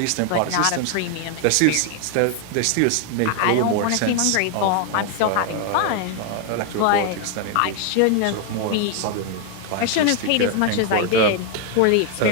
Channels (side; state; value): both; different; correlation 0.01